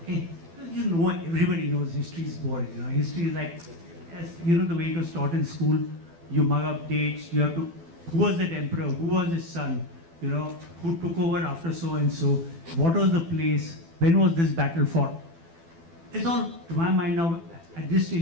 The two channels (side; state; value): left; late; 12 ms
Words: Okay, you know, everybody knows history is boring. You know, history is like, as you know, the way it was taught in school. You mug up dates. You have to. Who was that emperor? Who was his son? You know, who took over after so and so? What was the place? When was this battle fought? It's all, to my mind now, at this